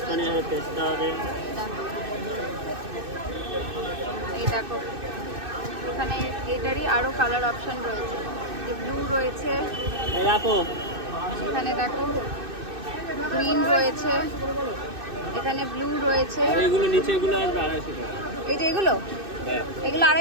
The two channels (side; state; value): left; late; 2.6 ms